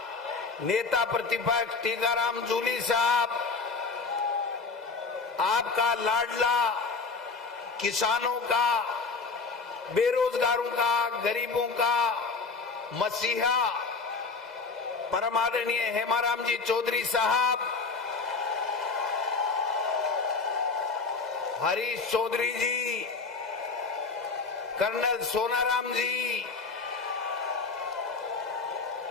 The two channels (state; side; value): quieter; right; 4.3 dB